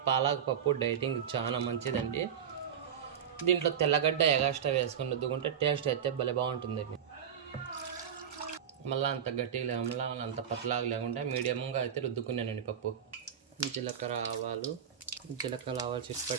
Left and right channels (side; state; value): left; quieter; 8.4 dB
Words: పాలక్ పప్పు డైటింగ్ చాలా మంచిదండి. దీంట్లో తెల్లగడ్డ ఎగాస్ట్రా వేసుకొని రుద్దుకుంటే టేస్ట్ అయితే భలే బాగుంటుందండి. మళ్ళీ అంత గట్టిగా లేకుండా అంత పతలాగా లేకుండా మీడియంగా అయితే రుద్దుకున్నానండి పప్పు. జీలకర్ర ఆవాలు